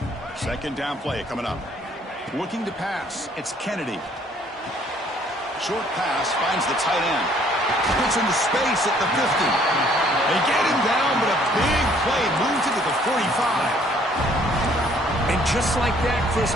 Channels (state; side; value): normal; both; correlation 0.61